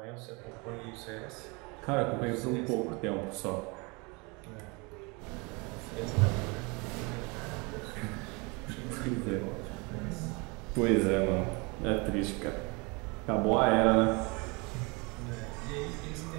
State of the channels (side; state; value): left; quieter; 28.7 dB